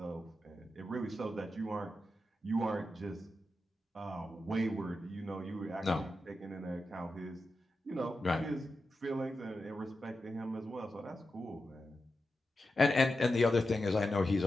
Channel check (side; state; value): both; normal; correlation 0.90